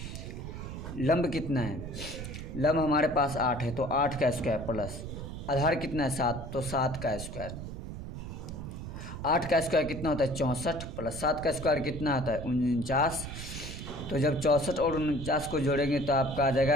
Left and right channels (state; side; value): noise; right; rumble, 8 dB below the sound